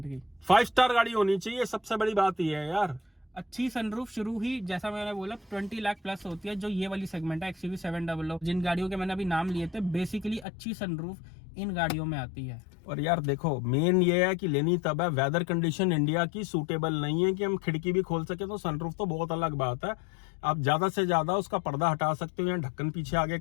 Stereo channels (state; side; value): drops out; right; at 10.5 s